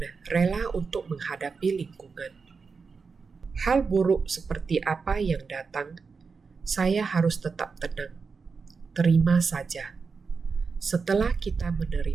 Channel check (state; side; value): quieter; left; 5.0 dB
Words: rela untuk menghadapi lingkungan. Hal buruk seperti apa yang datang, saya harus tetap tenang. Terima saja. Setelah kita